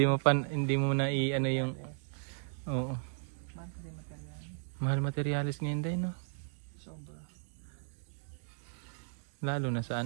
mo na ano yung oo. Mahal materialis ngayon day no. Lalo na sa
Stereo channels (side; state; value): left; silent; digital silence